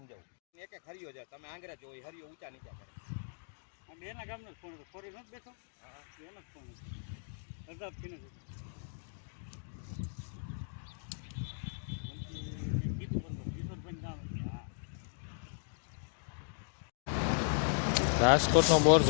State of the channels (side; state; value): right; silent; digital silence